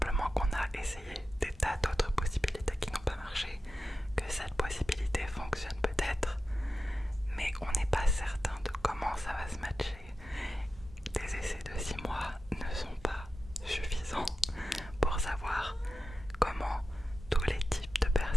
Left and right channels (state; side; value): normal; both; correlation 0.92